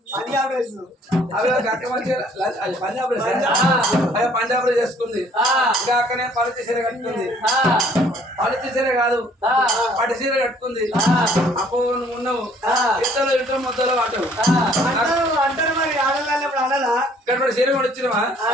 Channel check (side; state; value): both; normal; correlation 0.59